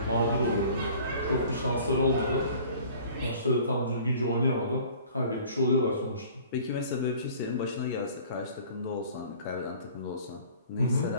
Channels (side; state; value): both; inverted; correlation -0.49